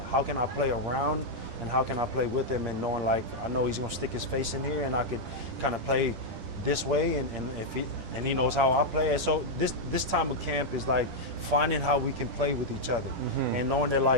how can I play around and how can I play with him, and knowing, like, I know he's going to stick his face in here and I could kind of play this way, and he knows how I play. And so this time of camp is like finding how we can play with each other, and knowing that,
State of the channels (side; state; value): left; late; 10 ms